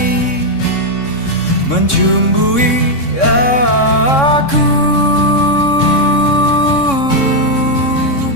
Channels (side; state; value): right; late; 3.6 ms